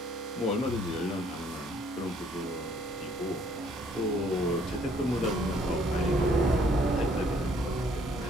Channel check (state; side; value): normal; both; correlation 0.63